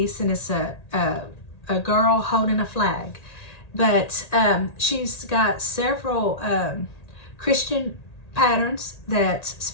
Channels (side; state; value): right; late; 1.8 ms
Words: and it's a girl holding a flag. But she's got several Christian patterns,